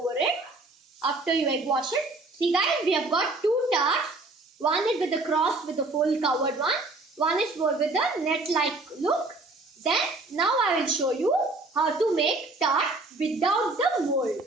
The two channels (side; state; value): left; quieter; 3.2 dB